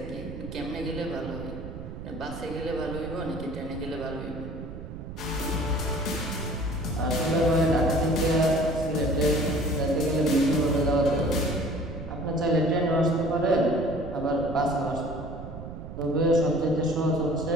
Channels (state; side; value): noise; right; rumble, 10 dB below the sound